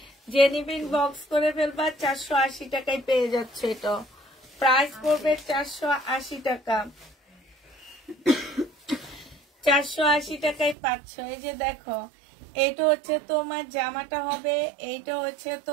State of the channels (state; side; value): drops out; left; at 10.8 s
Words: জেনিবিন বক্স করে ফেলবা, 480 টাকায় পেয়ে যাচ্ছে। এটা প্রাইস পড়বে 480 টাকা। 480 টাকায় পাচ্ছ। এই যে দেখো, এইটা হচ্ছে তোমার জামাটা হবে, এইটা হচ্ছে